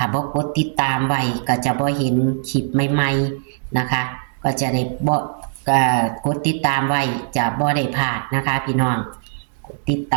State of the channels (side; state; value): left; silent; digital silence